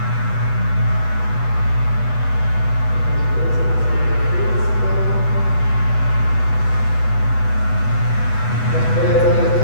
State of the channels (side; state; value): right; late; 8.1 ms